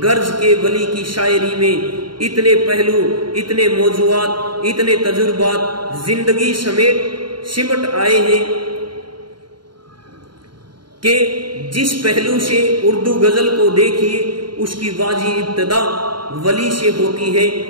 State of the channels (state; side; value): late; left; 0.72 ms